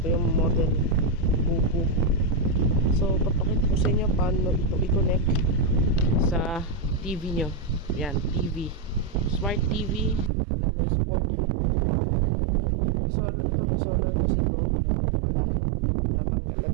Ito yung model Buku. So papakita ko sa inyo paano ito i-connect sa TV nyo. Yan, TV, smart TV na may supported Bluetooth. May solar kasi ito, pero wala, natanggal ang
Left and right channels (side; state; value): left; drops out; at 10.3 s